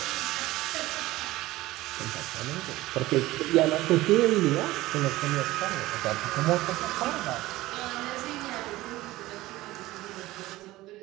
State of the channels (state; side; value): quieter; left; 17.7 dB